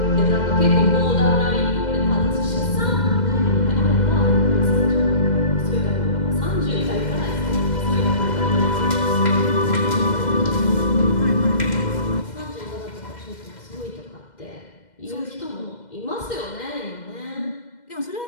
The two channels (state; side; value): late; right; 2.1 ms